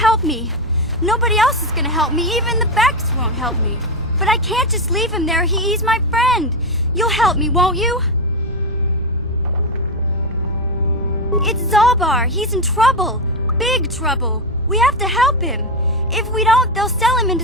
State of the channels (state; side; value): normal; both; correlation 0.09